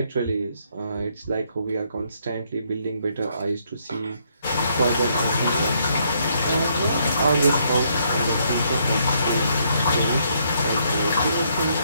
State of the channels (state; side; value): inverted; both; correlation -0.71